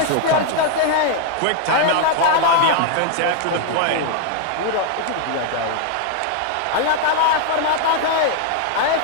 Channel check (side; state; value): both; different; correlation 0.00